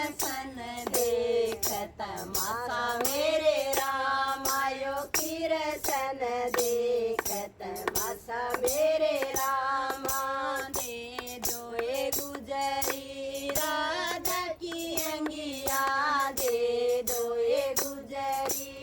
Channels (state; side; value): identical; both; correlation 1.00